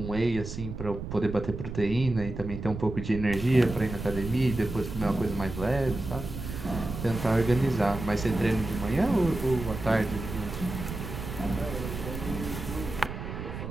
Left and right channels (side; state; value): right; noise; rumble, 8 dB below the sound